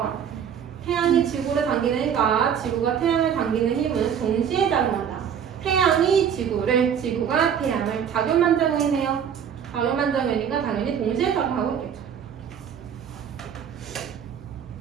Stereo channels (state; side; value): quieter; left; 8.2 dB